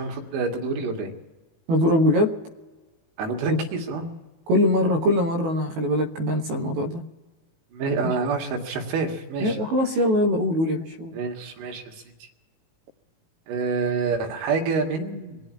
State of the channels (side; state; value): left; late; 19 ms